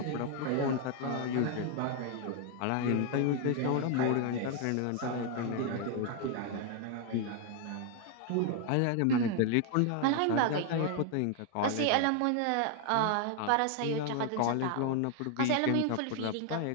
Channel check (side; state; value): both; different; correlation 0.00